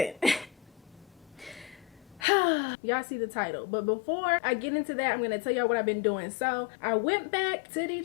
Y'all see the title, but before I get into that, I'm gonna tell y'all what I've been doing. So I went back to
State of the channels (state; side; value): drops out; right; at 2.2 s